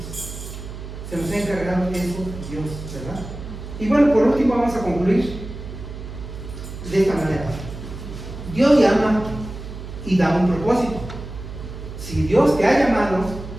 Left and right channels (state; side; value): noise; right; hum, 10 dB below the sound